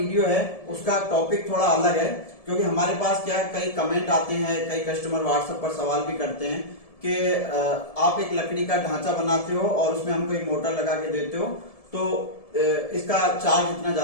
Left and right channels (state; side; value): late; right; 1.7 ms